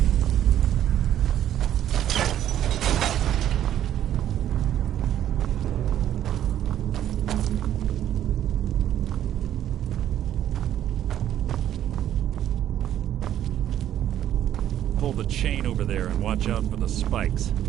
Pull the chain over there and watch out for the spikes.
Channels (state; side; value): quieter; left; 11.3 dB